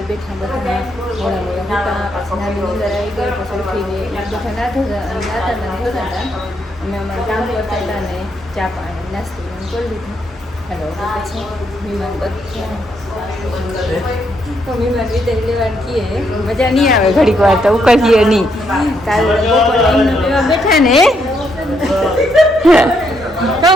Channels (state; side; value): normal; both; correlation 0.76